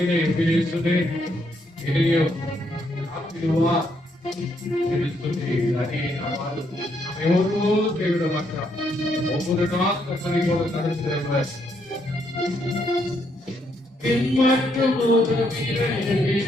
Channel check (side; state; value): both; normal; correlation 0.74